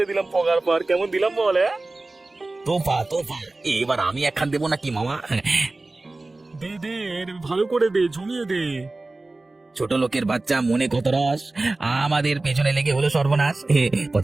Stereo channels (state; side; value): quieter; left; 3.1 dB